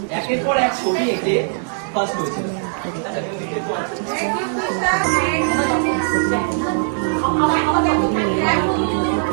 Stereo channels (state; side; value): silent; left; digital silence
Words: একের পর এক ছবি এঁকে ফার্স্ট হয়েছি।